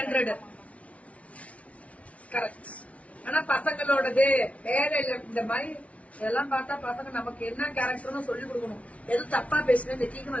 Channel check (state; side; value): late; right; 0.065 ms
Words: கரெக்ட். ஆனா பசங்களோடது வேற இல்ல. இந்த மாதிரி இதெல்லாம் பார்த்தா பசங்க நமக்கு என்ன கேரக்டர்னு சொல்லி கொடுக்கணும். எதுவும் தப்பா பேசுனேன் இந்த டீக்கு